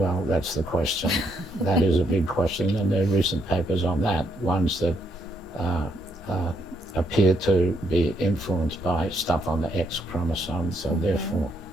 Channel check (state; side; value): normal; both; correlation 0.75